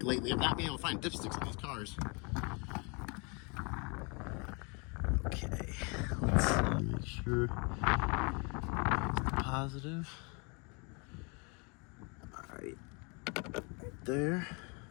lately of not being able to find dipsticks on these cars. Okay, let's see, make sure it's positive. All right there.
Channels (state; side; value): quieter; right; 32.5 dB